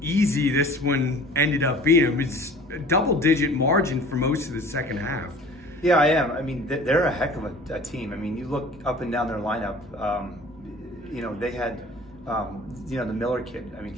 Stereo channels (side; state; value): both; normal; correlation 0.45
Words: this one ended up being? It was a double-digit margin for most of the second half. Yeah, I am. I mean, they're a heck of a team. I mean, you look up and down their lineup. You know, they had, you know, the Miller kid. I mean,